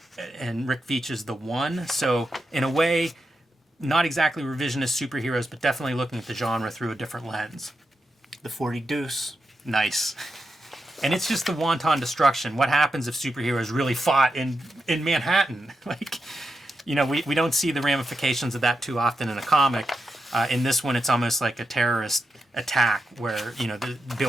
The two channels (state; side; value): normal; both; correlation 0.87